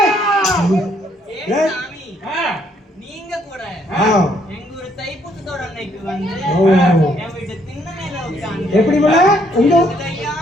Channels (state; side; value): normal; both; correlation 0.69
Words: ஏன் சாமி நீங்க கூட எங்க ஒரு தைப்பூசத்தோட அன்னைக்கு வந்து என் வீட்டு திண்ண மேல உட்கார்ந்து எப்படி போல உங்க இடது